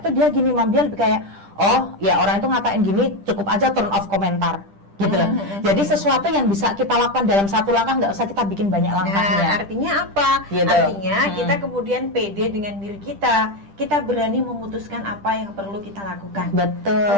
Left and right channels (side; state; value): left; late; 10 ms